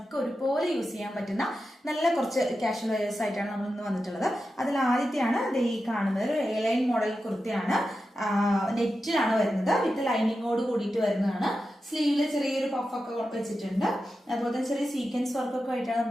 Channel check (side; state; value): both; normal; correlation 0.91